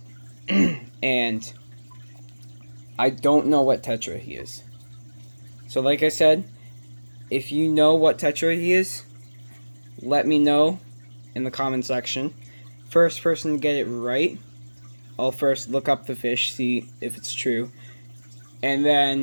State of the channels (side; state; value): both; inverted; correlation -1.00